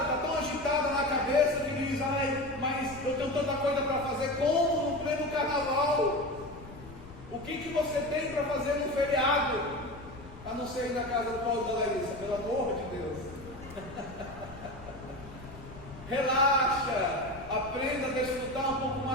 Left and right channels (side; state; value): left; noise; rumble, 16 dB below the sound